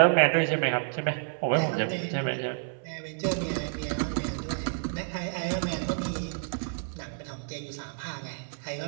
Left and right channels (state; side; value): silent; left; 58 dB below the other